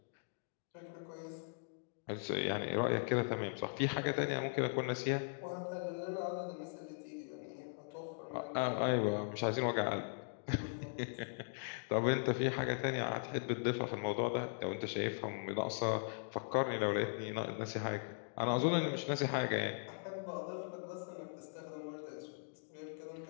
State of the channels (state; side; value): silent; right; digital silence